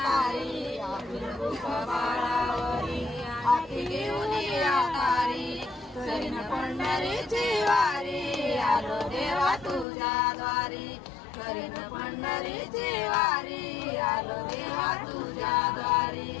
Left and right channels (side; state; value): right; drops out; at 9.9 s